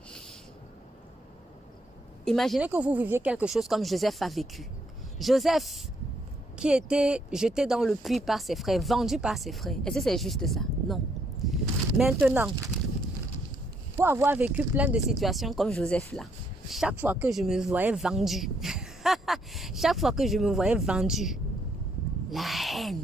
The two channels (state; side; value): normal; both; correlation 0.72